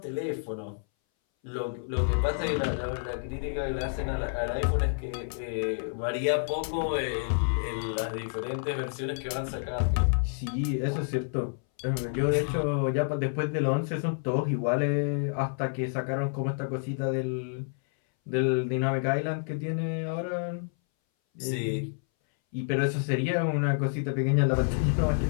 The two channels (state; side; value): silent; right; 59 dB below the other